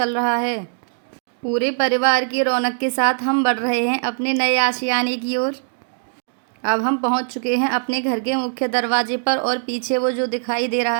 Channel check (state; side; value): silent; left; digital silence